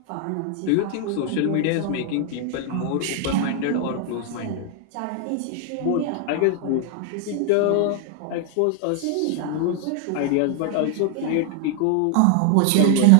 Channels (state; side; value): different; both; correlation 0.00